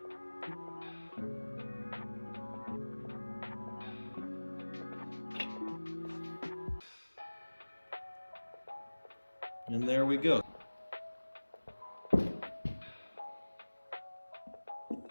And there we go.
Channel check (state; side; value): inverted; both; correlation -1.00